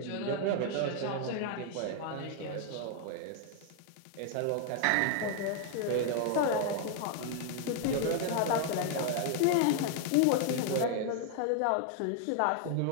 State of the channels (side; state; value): both; different; correlation 0.00